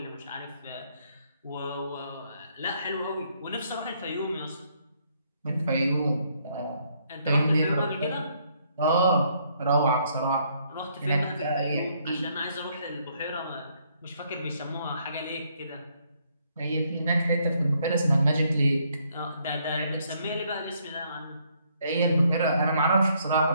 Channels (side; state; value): both; inverted; correlation -0.70